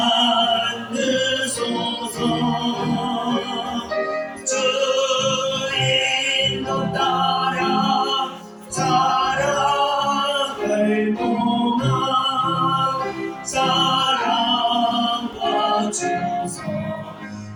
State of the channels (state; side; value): identical; both; correlation 1.00